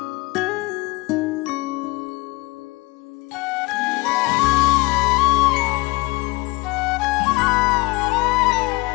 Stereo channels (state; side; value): quieter; right; 22.8 dB